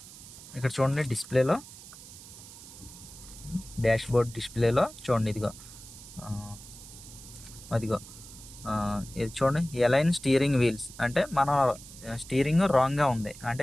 ఇక్కడ చూడండి, డిస్ప్లేలో డాష్ బోర్డ్ డిస్ప్లేలో చూడండి, ఇదిగో అదిగో ఇది చూడండి, ఎలైన్ స్టీరింగ్ వీల్స్ అంటే మన స్టీరింగ్ రాంగ్గా ఉంది,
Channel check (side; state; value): right; noise; hiss, 16 dB below the sound